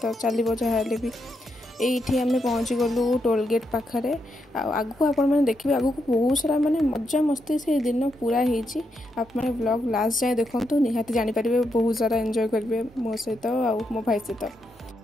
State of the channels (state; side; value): normal; both; correlation 0.82